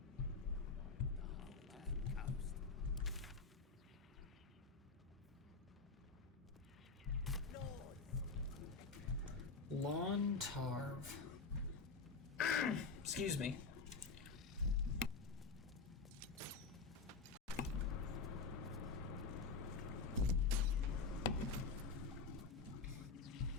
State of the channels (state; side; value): quieter; right; 4.5 dB